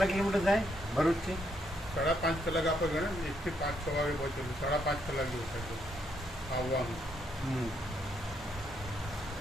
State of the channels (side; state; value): both; normal; correlation 0.75